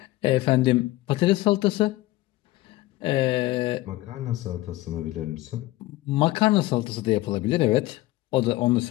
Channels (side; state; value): right; quieter; 17.9 dB